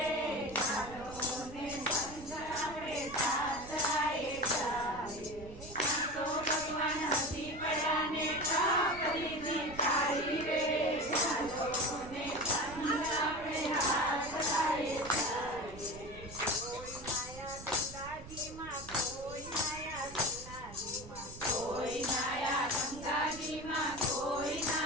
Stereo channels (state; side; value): noise; right; rumble, 15 dB below the sound